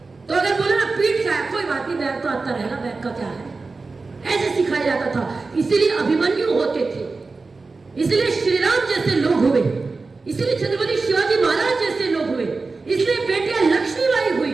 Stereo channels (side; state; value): left; quieter; 3.9 dB